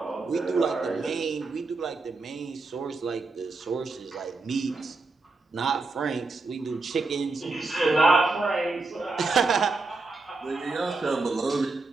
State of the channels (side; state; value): left; quieter; 3.6 dB